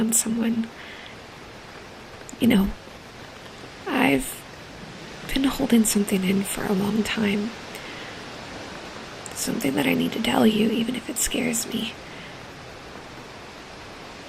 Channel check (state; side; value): identical; both; correlation 1.00